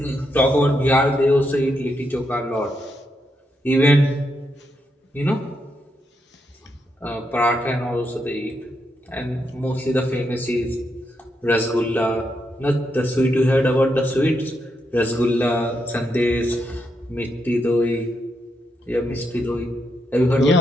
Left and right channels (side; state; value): both; normal; correlation 0.81